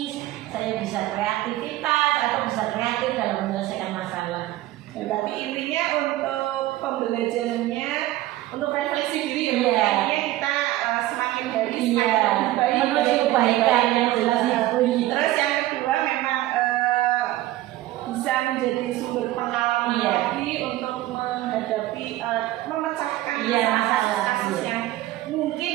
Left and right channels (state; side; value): quieter; left; 15.9 dB